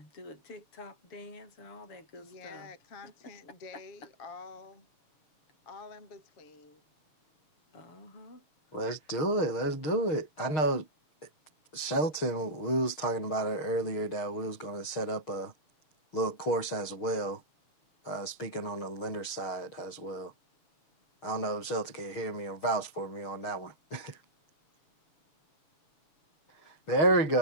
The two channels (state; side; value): late; right; 6.5 ms